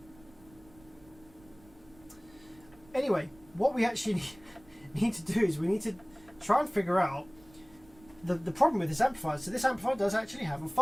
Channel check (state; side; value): noise; right; rumble, 26 dB below the sound